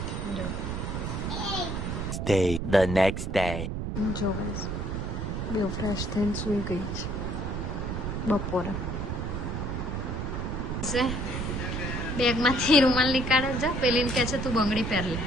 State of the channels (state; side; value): noise; right; rumble, 3 dB below the sound